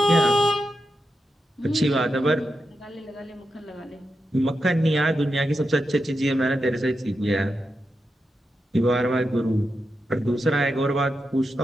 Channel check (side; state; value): both; normal; correlation 0.87